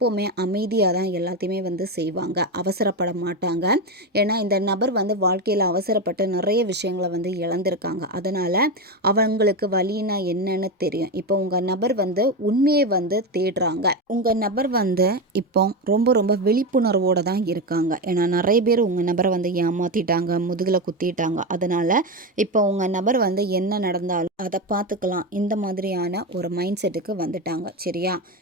அமைதியாக தான் எல்லாத்தையுமே செய்வாங்க, அவசரப்பட மாட்டாங்க. ஏன்னா இந்த நபர் வாழ்க்கையில் அவசரப்பட்டு நிறைய விஷயங்களை இழந்திருக்காங்க. அதனால் அவங்களுக்கு வலினா என்னன்னு தெரியும். இப்போ உங்கள் நபர் உண்மையை தேடுறாங்க. உங்கள் நபர் இப்போ ரொம்ப ரொம்ப விழிப்புணர்வோடு தான் இருக்காங்க. ஏன்னா நிறைய பேர் உங்கள் நபரை ஏமாற்றிட்டாங்க, முதுகில் குத்திட்டாங்க. அதனால் இப்போ உங்கள் நபர் என்ன நடந்தாலும் அதை பார்த்துக்கலாம் இந்த மாதிரியான ஒரு மைண்ட் செட்டுக்கு வந்துட்டாங்க, சரியா?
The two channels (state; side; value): normal; both; correlation 0.15